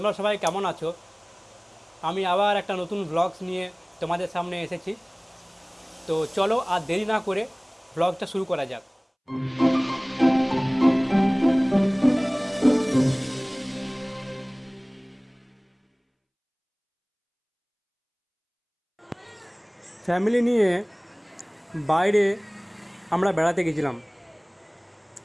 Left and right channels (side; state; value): both; identical; correlation 1.00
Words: সবাই কেমন আছো? আমি আবার একটা নতুন ব্লগস নিয়ে তোমাদের সামনে এসেছি। তো চলো আর দেরি না করে ব্লগটা শুরু করা যাক। ফ্যামিলি নিয়ে বাইরে আমরা বেড়াতে গেছিলাম।